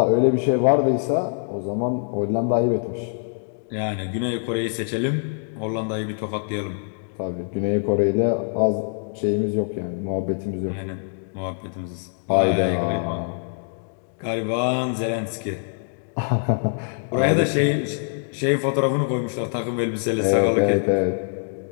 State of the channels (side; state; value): right; silent; digital silence